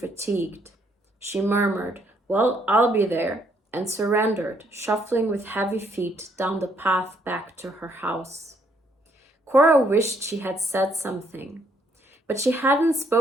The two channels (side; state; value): both; normal; correlation 0.70